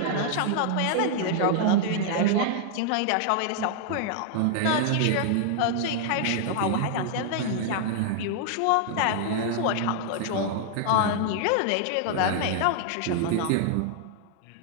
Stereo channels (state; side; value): different; both; correlation 0.00